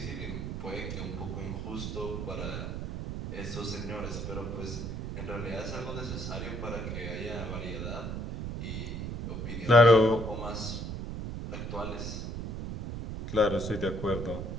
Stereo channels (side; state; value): right; noise; rumble, 5 dB below the sound